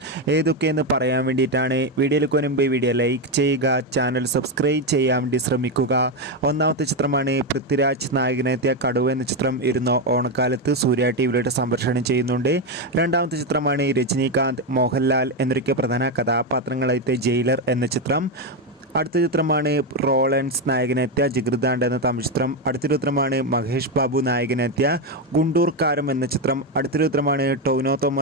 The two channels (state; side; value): normal; both; correlation 0.09